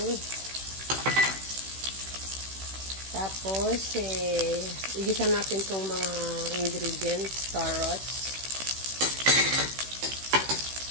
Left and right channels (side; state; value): left; late; 16 ms